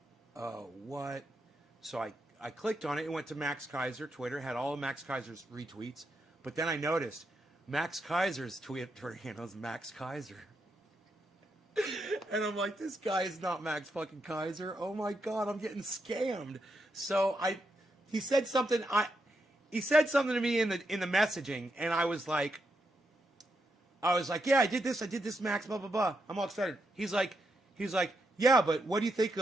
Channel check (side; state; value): both; normal; correlation 0.82